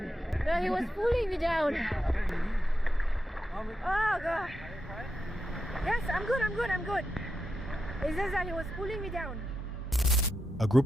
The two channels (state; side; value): normal; both; correlation 0.87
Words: No, he was pulling me down. Oh God. Yes, I'm good. It's just that he was pulling me down. A